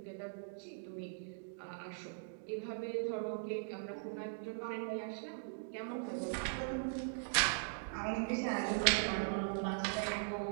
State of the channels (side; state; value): left; silent; digital silence